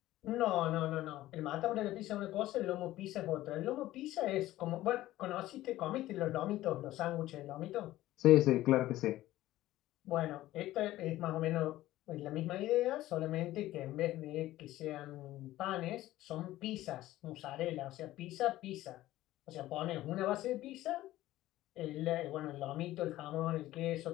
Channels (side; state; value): right; quieter; 15.5 dB